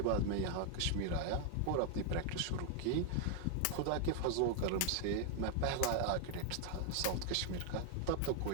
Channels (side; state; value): both; different; correlation 0.00